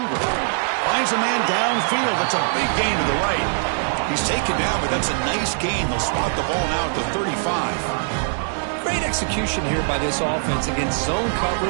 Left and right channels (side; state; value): left; silent; digital silence